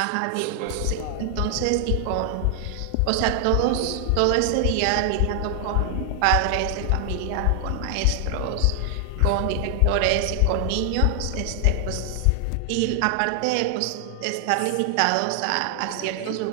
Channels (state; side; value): different; both; correlation 0.00